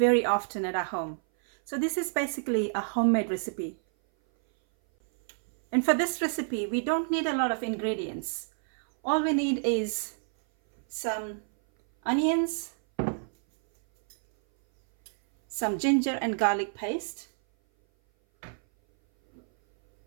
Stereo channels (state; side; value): silent; left; 58 dB below the other